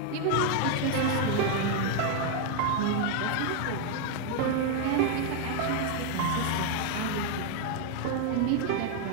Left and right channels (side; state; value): both; different; correlation 0.00